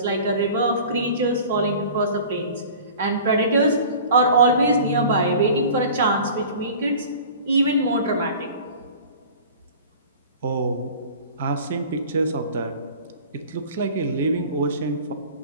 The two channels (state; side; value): inverted; both; correlation -0.42